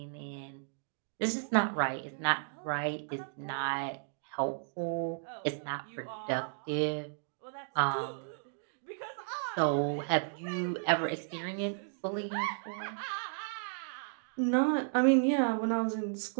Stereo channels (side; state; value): left; silent; digital silence